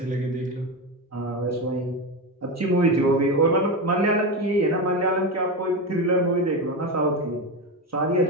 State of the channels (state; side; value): normal; both; correlation 0.17